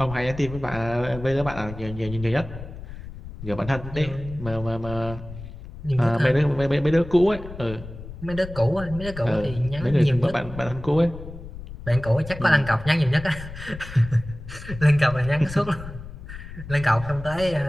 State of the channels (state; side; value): noise; left; rumble, 12 dB below the sound